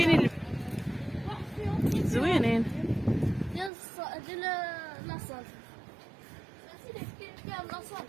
واحد فيهم زوينين. ديال لاصال. سيدي كاين فيها لاصال.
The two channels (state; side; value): drops out; left; at 3.7 s